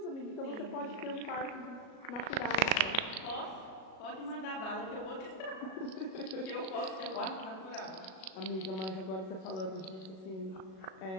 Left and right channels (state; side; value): late; right; 37 ms